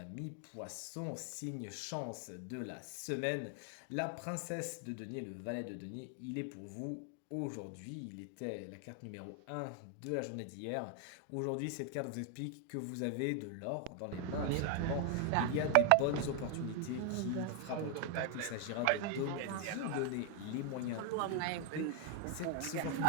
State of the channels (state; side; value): different; both; correlation 0.00